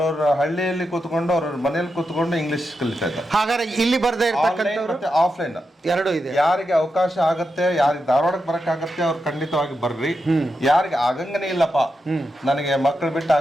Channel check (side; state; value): both; normal; correlation 0.87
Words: ಹಳ್ಳಿಯಲ್ಲಿ ಕೂತ್ಕೊಂಡು ಅವ್ರವ್ರ ಮನೆಯಲ್ಲಿ ಕೂತ್ಕೊಂಡು ಇಂಗ್ಲಿಷ್ ಕಲಿತಾ ಇದ್ದಾರೆ. ಹಾಗಾದ್ರೆ ಇಲ್ಲಿ ಬರ್ದೇ ಇರ್ತಕ್ಕಂಥವ್ರು ಮತ್ತೆ ಆಫ್ಲೈನ್ ಎರಡೂ ಇದೆ. ಯಾರಿಗೆ ಅವಕಾಶ ಆಗತ್ತೆ, ಯಾರಿಗೆ ಧಾರವಾಡಕ್ಕೆ ಬರಕ್ಕಾಗತ್ತೆ ಅವ್ರು ಖಂಡಿತವಾಗಿ ಬರ್ರಿ. ಯಾರಿಗೆ ಆಗಂಗನೇ ಇಲ್ಲಪ್ಪ, ನನಗೆ ಮಕ್ಕಳು ಬಿಟ್ಟು